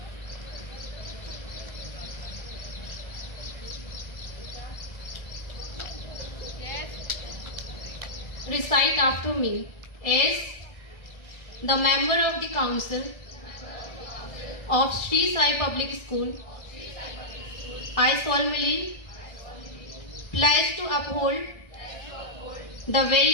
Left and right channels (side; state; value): right; late; 1.6 ms